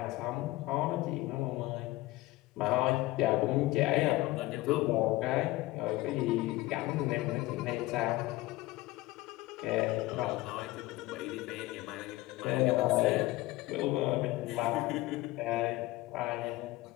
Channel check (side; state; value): right; quieter; 18.6 dB